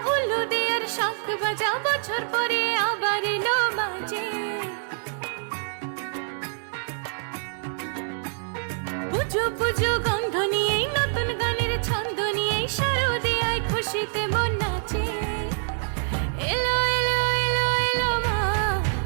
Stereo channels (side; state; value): left; silent; digital silence